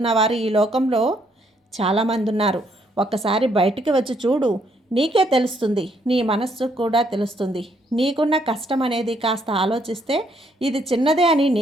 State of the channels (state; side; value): normal; both; correlation 0.71